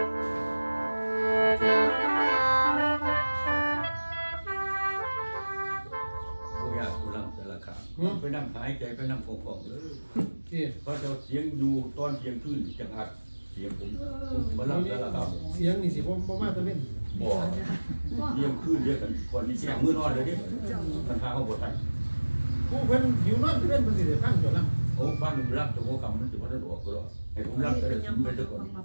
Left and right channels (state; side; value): inverted; both; correlation -1.00